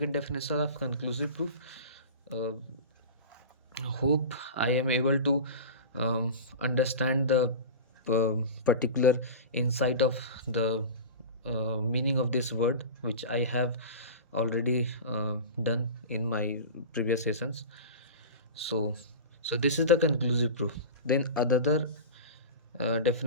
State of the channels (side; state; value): both; inverted; correlation -0.30